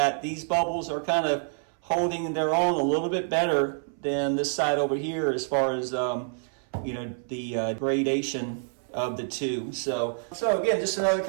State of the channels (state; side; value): silent; left; 60 dB below the other